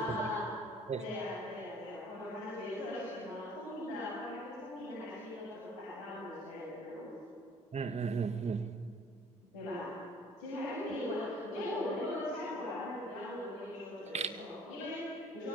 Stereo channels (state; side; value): normal; both; correlation 0.54